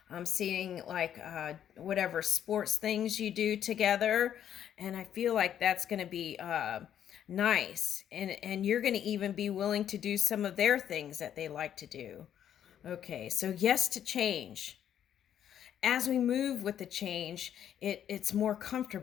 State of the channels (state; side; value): quieter; right; 9.9 dB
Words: I'm seeing like whatever sports things you do together, and I feel like that's going to be nice, and you're going to even be willing to do some of their things that they like to do. Okay, so yes to change. As we move with the change, it's more